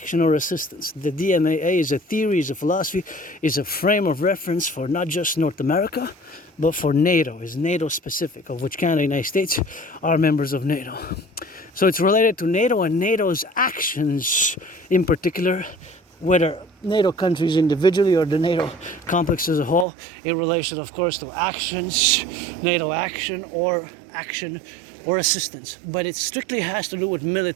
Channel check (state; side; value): drops out; left; at 19.9 s